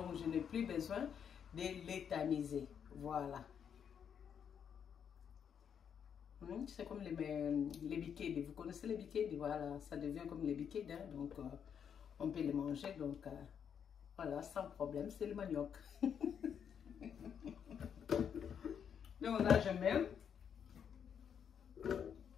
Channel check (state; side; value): quieter; right; 7.9 dB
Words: je n'ai plus besoin de les tamiser. Voilà. C'est comme les bikedi. Vous connaissez les bikedi? Voilà, ça devient comme les bikedi. Hein? Donc, on peut les manger. Donc, voilà, sans problème. C'est le manioc. Donc, là, je mets.